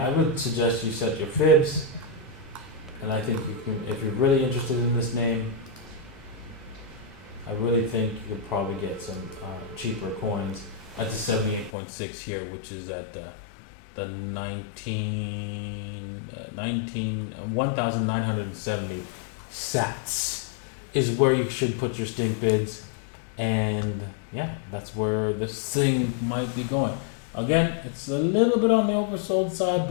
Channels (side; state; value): right; drops out; at 11.7 s